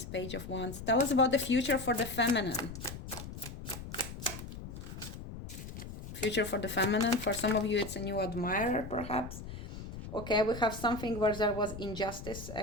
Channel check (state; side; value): noise; left; rumble, 10 dB below the sound